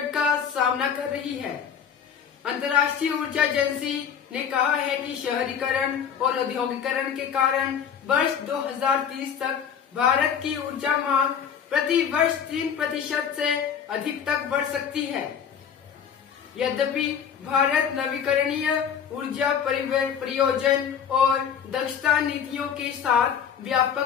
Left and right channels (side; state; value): right; quieter; 7.8 dB